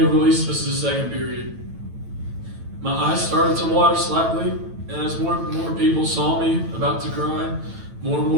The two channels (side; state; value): left; late; 9.0 ms